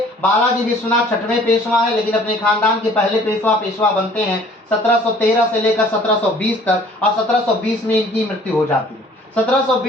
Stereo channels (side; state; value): both; normal; correlation 0.54